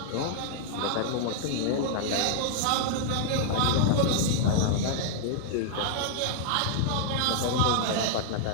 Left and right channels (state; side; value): different; both; correlation -0.01